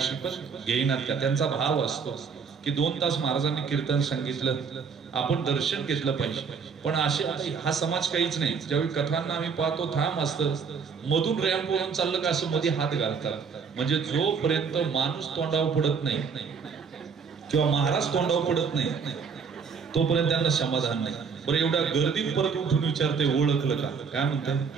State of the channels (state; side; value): quieter; left; 5.9 dB